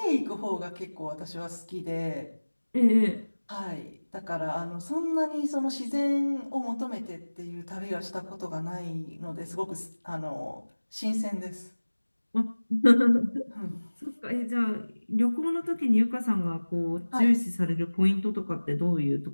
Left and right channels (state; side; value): inverted; both; correlation -1.00